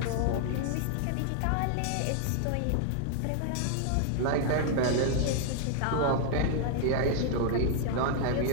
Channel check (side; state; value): both; different; correlation -0.01